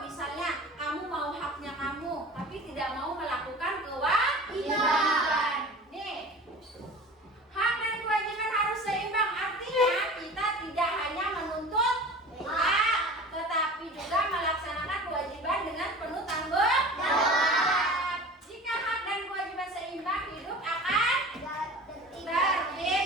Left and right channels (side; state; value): both; normal; correlation 0.39